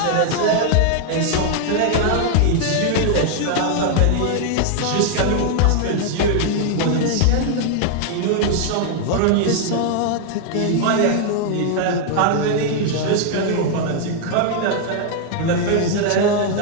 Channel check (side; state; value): both; different; correlation 0.00